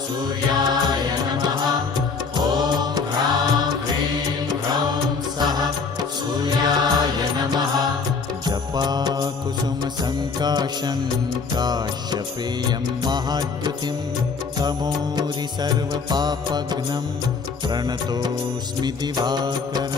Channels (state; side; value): quieter; right; 5.0 dB